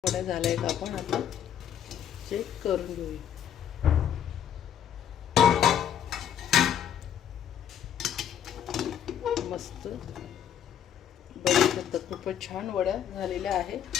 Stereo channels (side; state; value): right; quieter; 9.5 dB